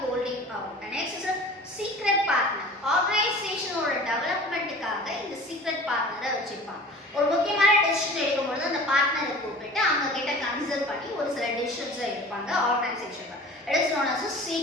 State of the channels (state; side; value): normal; both; correlation 0.42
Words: holding out. And next is a secret partner. ஆர்கனைசேஷனோட டெவலப்மெண்ட்டுக்காக இந்த சீக்ரெட் பார்ட்னரை வச்சிருப்பாங்க. ஒரு முக்கியமான டெசிஷன் எடுக்கும்போது அந்த பார்ட்னரை கூப்பிட்டு அவங்க கிட்ட கன்சல்ட் பண்ணி ஒரு சில டெசிஷன்ஸ் எடுப்பாங்க ஆர்கனைசேஷன்ல. It is known as a